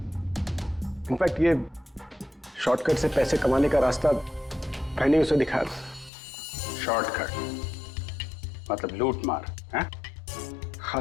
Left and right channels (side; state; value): right; drops out; at 6.1 s